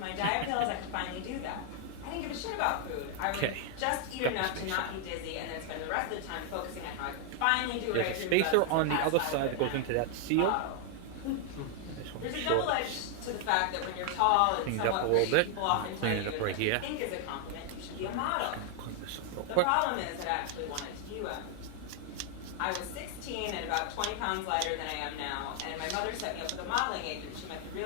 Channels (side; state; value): both; different; correlation 0.00